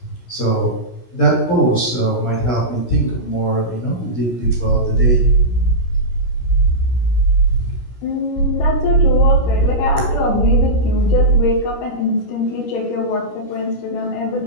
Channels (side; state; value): right; late; 16 ms